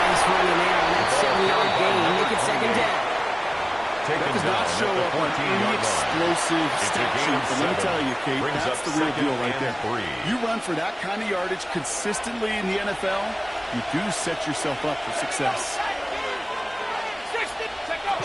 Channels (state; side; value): identical; both; correlation 1.00